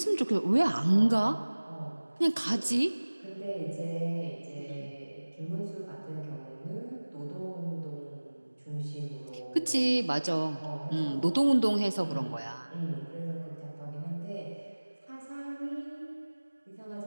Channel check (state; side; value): inverted; both; correlation -1.00